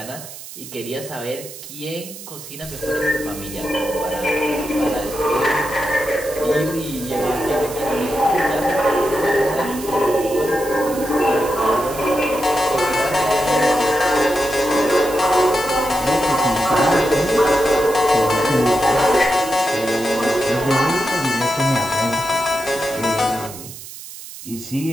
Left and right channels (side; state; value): right; noise; hiss, 14 dB below the sound